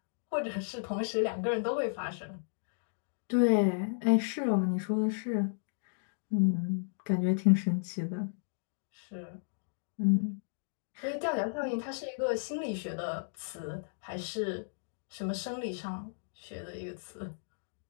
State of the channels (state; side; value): silent; right; digital silence